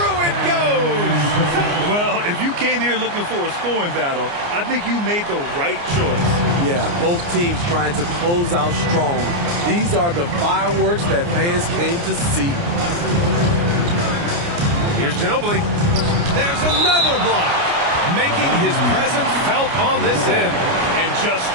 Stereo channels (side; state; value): left; late; 29 ms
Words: it goes. Well, if you came here looking for a scoring battle, I think you made the right choice. Yeah, both teams trying to close out strong. These are the fireworks that fans came to see. Here's Ginobili. There's another block. Making his presence felt on this end. And just